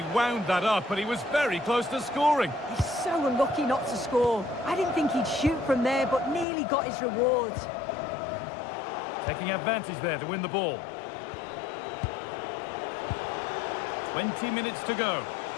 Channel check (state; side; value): drops out; right; at 6.5 s